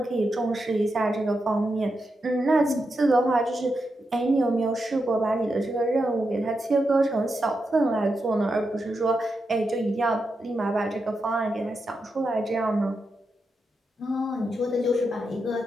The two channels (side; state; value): both; normal; correlation 0.86